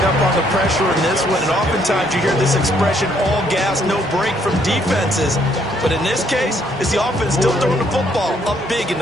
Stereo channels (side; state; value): both; normal; correlation 0.68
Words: on the pressure in this one, and oftentimes you hear this expression, all gas, no break from defenses. But in this case, it's the offense still throwing the football up big in